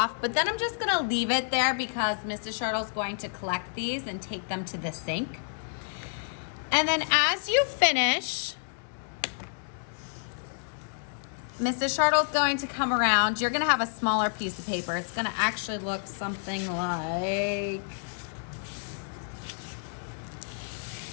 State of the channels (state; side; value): silent; right; 58 dB below the other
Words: but then I'm just gonna leave it there because Mrs. Shirtle's going to collect these and take them to the sink. And then as you finish, Mrs. Shirtle's going to come around. You're gonna have a smaller piece of paper. It's gonna actually look something like